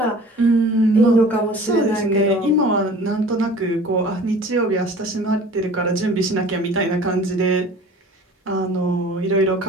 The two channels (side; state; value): both; normal; correlation 0.45